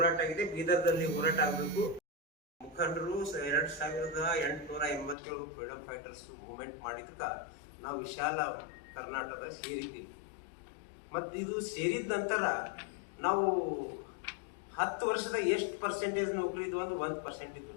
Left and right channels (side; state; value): right; drops out; at 5.2 s